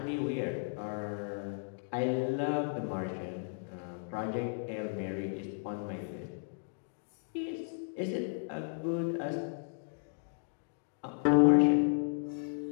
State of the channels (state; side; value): silent; right; digital silence